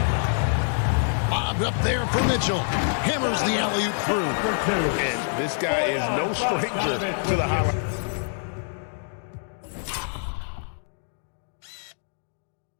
Bob up there for Mitchell. Hammers the alley-oop through. And this guy is no stranger to the highlight.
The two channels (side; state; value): right; silent; digital silence